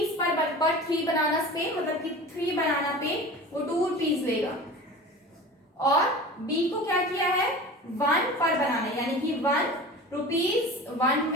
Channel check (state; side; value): normal; both; correlation 0.36